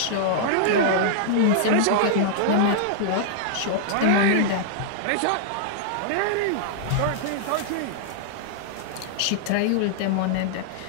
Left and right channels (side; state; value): both; different; correlation -0.01